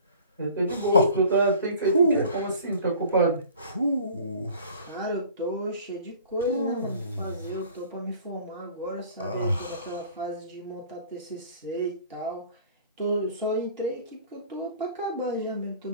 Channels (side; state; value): both; inverted; correlation -0.48